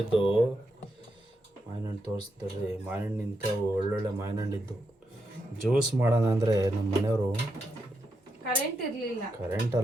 ಇದ್ದು. ಮಾವಿನ ಹಣ್ಣು ತೋರಿಸ್ತಾರೆ. ಮಾವಿನ ಹಣ್ಣು ನಿಂತವು, ಒಳ್ಳೊಳ್ಳೆ ಮಾವಿನ ಹಣ್ಣಿದ್ದು. ಜ್ಯೂಸ್ ಮಾಡೋಣ ಅಂದರೆ ನಮ್ಮ ಮನೆಯವರು ಕರೆಂಟ್ ಇರಲಿಲ್ಲ. ಕರೆಂಟ್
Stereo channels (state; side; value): normal; both; correlation 0.83